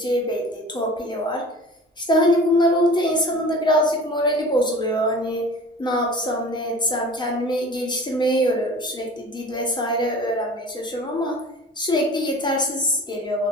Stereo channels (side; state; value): both; normal; correlation 0.41